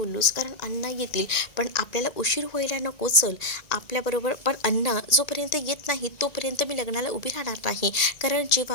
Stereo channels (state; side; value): late; right; 1.9 ms